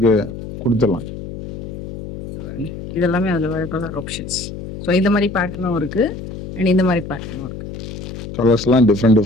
கொடுத்துடலாம். இதெல்லாமே அதுல வர கலர் ஆப்ஷன்ஸ். ஸோ இந்த மாதிரி பேட்டர்னும் இருக்கு அண்ட் இந்த மாதிரி பேட்டர்னும் இருக்கு. கலர்ஸ்லாம்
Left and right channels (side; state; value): left; noise; hum, 10 dB below the sound